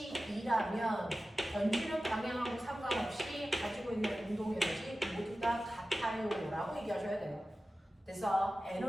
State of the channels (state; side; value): normal; both; correlation 0.95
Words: 2라면 던지는 방향하고 상관없이 가지고 있는 운동 에너지 모두 다 같아요 라고 얘기하셔야 돼요. 그래서